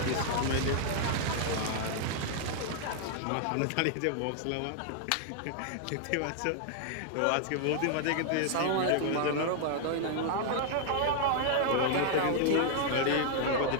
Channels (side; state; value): both; different; correlation -0.01